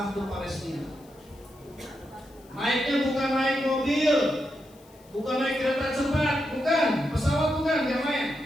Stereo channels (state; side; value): noise; left; hiss, 28 dB below the sound